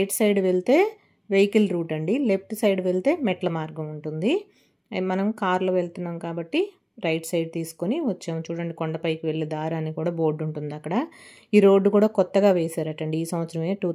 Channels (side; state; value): both; identical; correlation 1.00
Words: సైడ్ వెళ్తే వెహికల్ రూట్ అండి, లెఫ్ట్ సైడ్ వెళ్తే మెట్ల మార్గం ఉంటుంది. మనం కార్లో వెళ్తున్నాం కాబట్టి రైట్ సైడ్ తీసుకొని వచ్చాము. చూడండి, కొండపైకి వెళ్ళే దారి అని కూడా బోర్డు ఉంటుంది అక్కడ. ఈ రోడ్డు కూడా కొత్తగా వేశారటండి ఈ సంవత్సరమే,